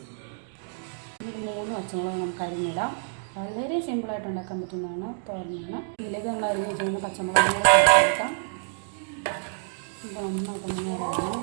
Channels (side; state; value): left; silent; digital silence